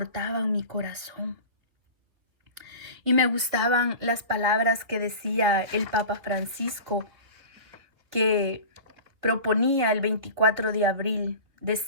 mi corazón. Y me gustaban las palabras que decía el Papa Francisco, que proponía el 24 de abril.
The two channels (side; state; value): left; late; 2.5 ms